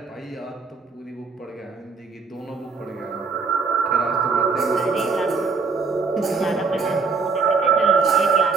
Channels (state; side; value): quieter; left; 4.7 dB